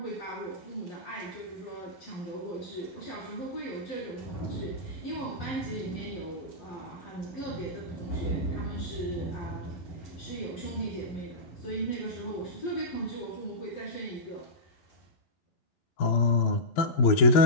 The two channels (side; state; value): right; late; 11 ms